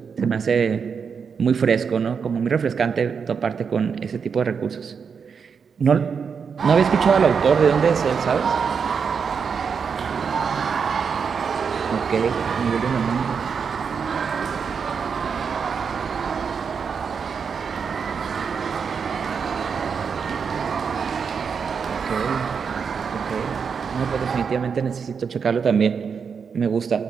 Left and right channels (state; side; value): quieter; left; 6.2 dB